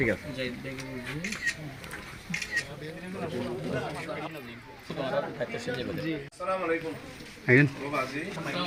আছে আসসালামু আলাইকুম আইন বাবাজি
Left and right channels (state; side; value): identical; both; correlation 1.00